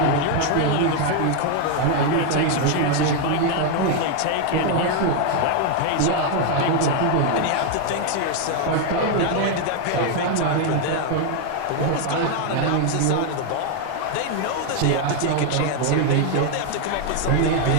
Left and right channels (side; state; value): both; different; correlation 0.01